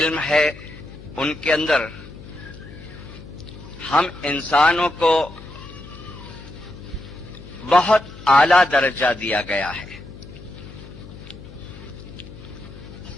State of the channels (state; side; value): noise; left; hum, 16 dB below the sound